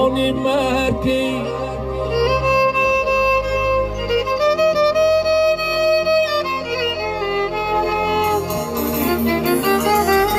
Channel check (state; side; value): identical; both; correlation 1.00